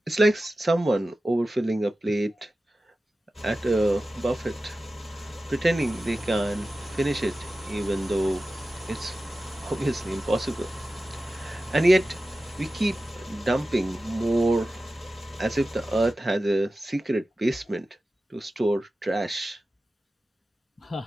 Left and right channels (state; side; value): normal; both; correlation 0.94